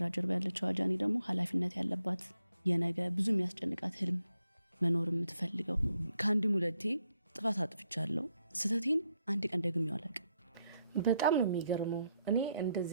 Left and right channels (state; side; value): inverted; both; correlation -0.78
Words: ጀርባ ያለችው ጃኒ ደግሞ ኃላፊነት ያለባት የነገ ብዙ የሚያስጨንቃት ህልም መኖር የምትፈልገው። ከአንድም ሁለቴ ጥፋት አጥፍቻለሁ። ስህተቴን አንድ ቀን ደግሜው አላውቅም። በጣም ነው የሚገርመው። እኔ